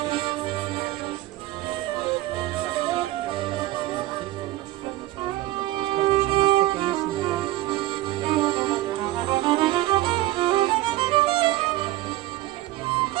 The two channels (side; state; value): left; quieter; 16.4 dB